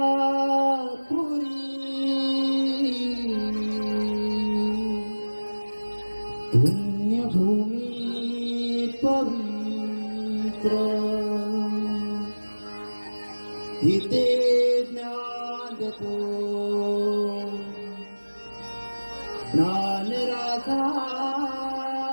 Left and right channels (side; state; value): both; inverted; correlation -1.00